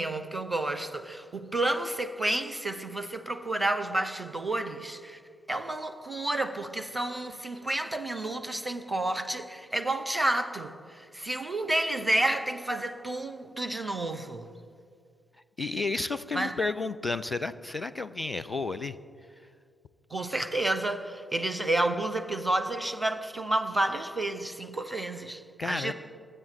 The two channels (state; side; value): normal; both; correlation 0.88